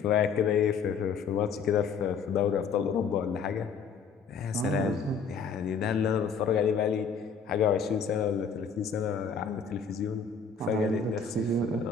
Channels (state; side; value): quieter; right; 5.7 dB